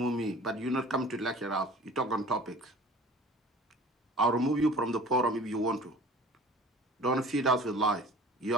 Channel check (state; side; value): normal; both; correlation 0.45